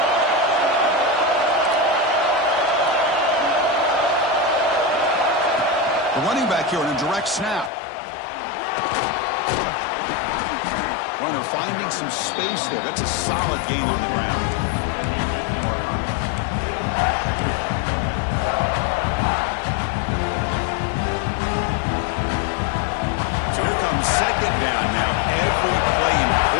The running back here in a direct snap. Runner finding some space there. That's a solid gain on the ground. So here comes 2nd down now. Every play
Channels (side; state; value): right; drops out; at 7.7 s